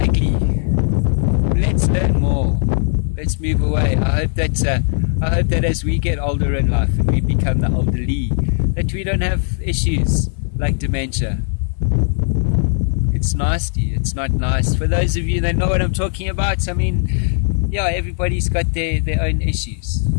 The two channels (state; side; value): silent; right; digital silence